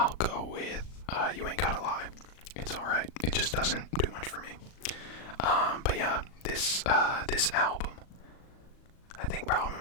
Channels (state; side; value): late; right; 38 ms